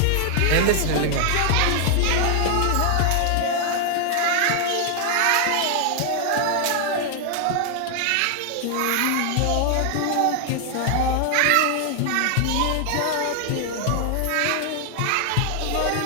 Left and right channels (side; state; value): both; different; correlation 0.00